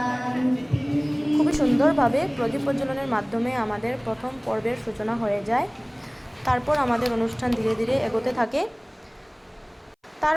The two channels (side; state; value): both; identical; correlation 1.00